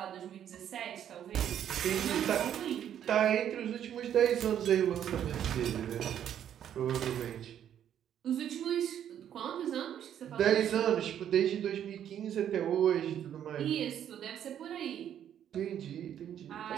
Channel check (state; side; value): quieter; left; 9.9 dB